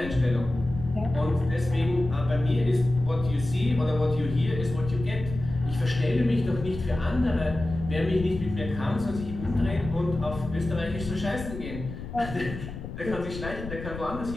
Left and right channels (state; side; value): noise; left; rumble, 9 dB below the sound